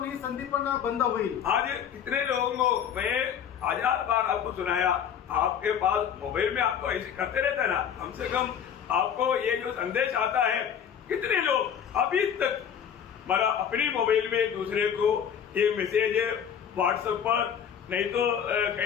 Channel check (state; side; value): quieter; right; 8.4 dB